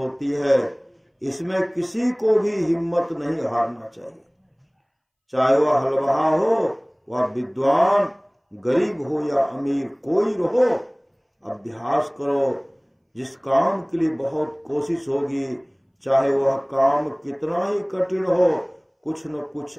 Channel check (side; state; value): both; identical; correlation 1.00